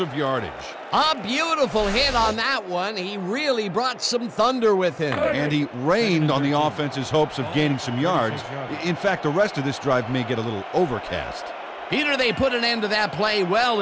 of yardage. A beautiful hit on that one. He really brought some thunder with him. And he rained on the offense's hopes of gaining some yards. In fact, the rest of this drive may get a little overcast. Peter, they put an end to that play well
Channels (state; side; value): identical; both; correlation 1.00